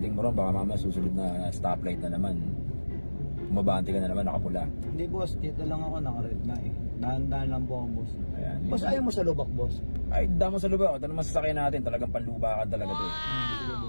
mo ron, baka mamaya susunod na stoplight na naman. Umabante ka na naman, nakapula. Hindi boss, dito lang ako naka-red na eh. Dahan-dahan lang po ako boss. Ayan. Boss, ayaw mo sa lubak boss? Ay, damo sa lubak. Ito naman sasakyan natin, talagang panlubakan talaga ito eh. Sige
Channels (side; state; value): both; inverted; correlation -1.00